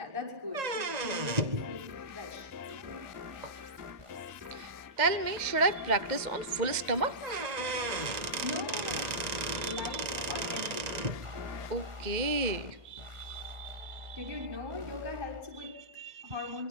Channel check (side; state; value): left; late; 1.8 ms